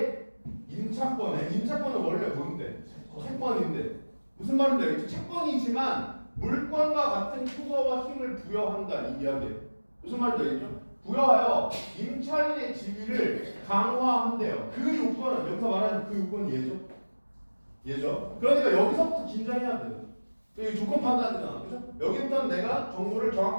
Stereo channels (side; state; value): both; inverted; correlation -1.00